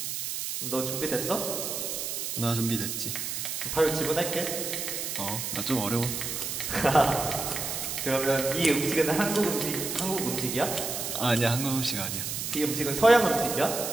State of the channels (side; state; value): right; noise; hiss, 4 dB below the sound